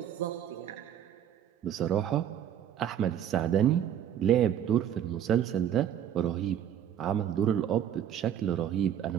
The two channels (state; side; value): quieter; left; 9.9 dB